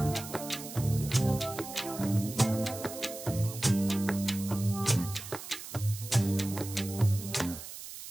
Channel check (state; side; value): noise; right; hiss, 11 dB below the sound